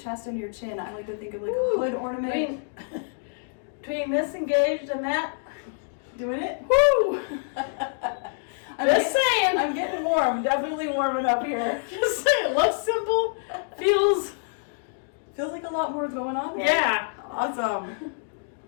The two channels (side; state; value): right; silent; digital silence